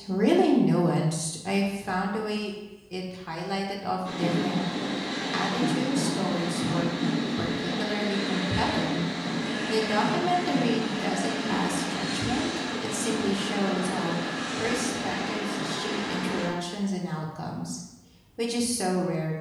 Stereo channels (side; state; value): both; identical; correlation 1.00